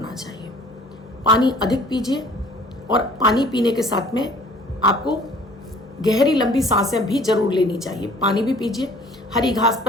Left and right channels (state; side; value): normal; both; correlation 0.52